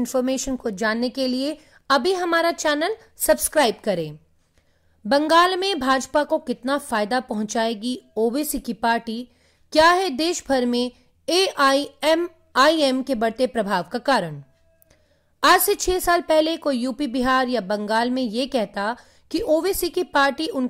को जानने के लिए अभी हमारा चैनल सब्सक्राइब करें। बंगाल में भाजपा को कितना फायदा पहुंचाएगी ओवैसी की पार्टी? क्या है देश भर में AIMIM के बढ़ते प्रभाव का कारण? आज से 6 साल पहले कोई यूपी, बिहार या बंगाल में ये कहता कि ओवैसी की पार्टी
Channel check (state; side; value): identical; both; correlation 1.00